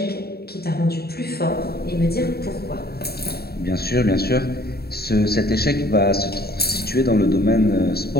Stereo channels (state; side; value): late; right; 0.46 ms